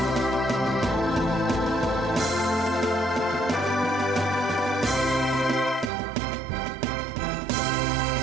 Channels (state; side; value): drops out; left; at 5.9 s